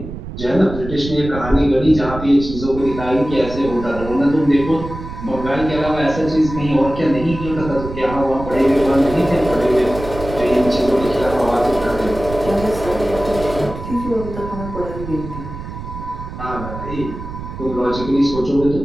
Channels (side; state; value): right; noise; rumble, 10 dB below the sound